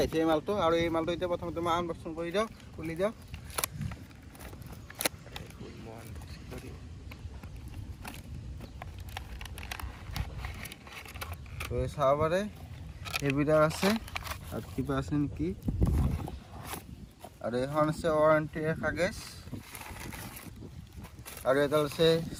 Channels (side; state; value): both; identical; correlation 1.00